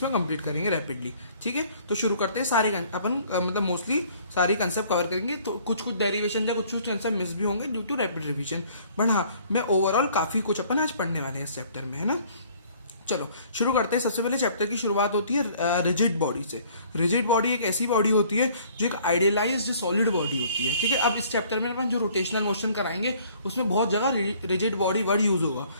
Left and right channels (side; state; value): both; inverted; correlation -0.56